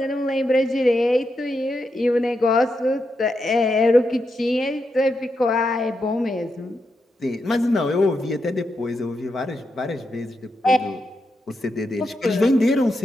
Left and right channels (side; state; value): both; normal; correlation 0.85